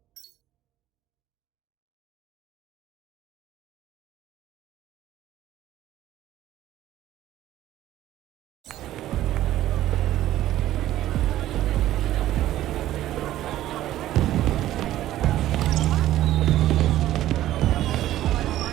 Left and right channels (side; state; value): left; quieter; 13.8 dB